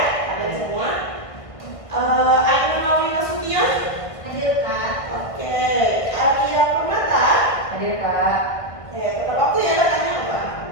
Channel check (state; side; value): late; right; 1.5 ms